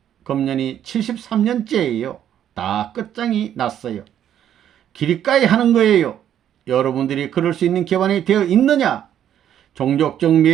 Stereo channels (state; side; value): quieter; left; 10.3 dB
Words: 금년이 73년째예요. 다 끝장이 났어요. 기리까이 하는 거예요. 여러분들이 그럴 수 있는 기반이 되어 있느냐? 종족적